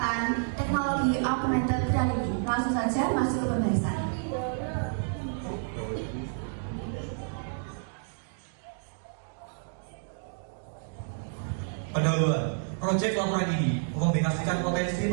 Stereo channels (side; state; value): left; silent; digital silence